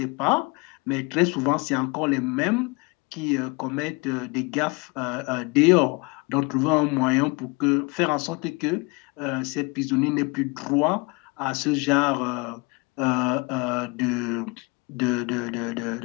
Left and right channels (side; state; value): right; quieter; 28.2 dB